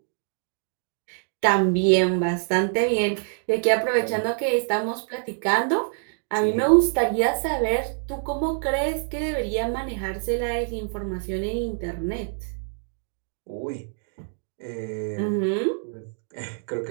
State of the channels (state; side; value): silent; left; 59 dB below the other